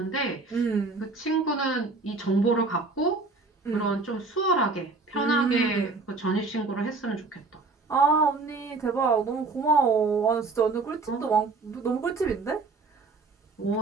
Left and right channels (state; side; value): quieter; left; 3.9 dB